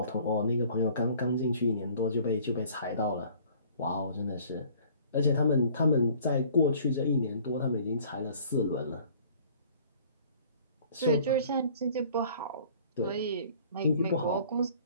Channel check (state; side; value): inverted; both; correlation -0.53